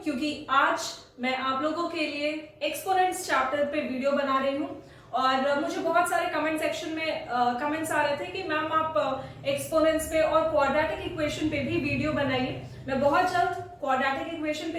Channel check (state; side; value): identical; both; correlation 1.00